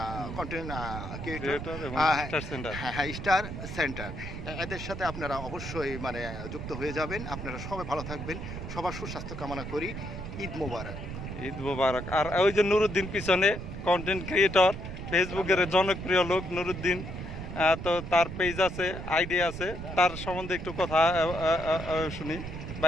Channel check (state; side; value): noise; right; rumble, 8 dB below the sound